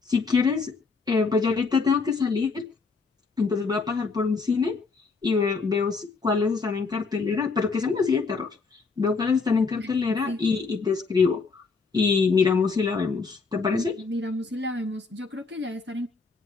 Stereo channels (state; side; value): quieter; right; 4.6 dB